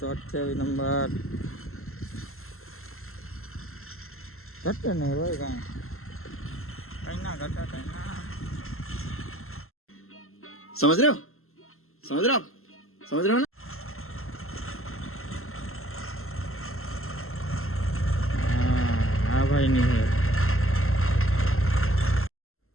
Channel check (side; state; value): right; late; 0.62 ms